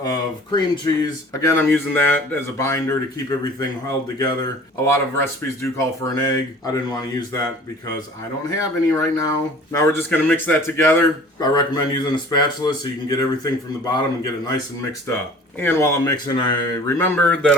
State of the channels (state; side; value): normal; both; correlation 0.47